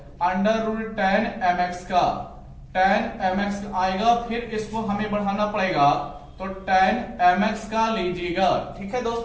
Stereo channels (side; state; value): both; identical; correlation 1.00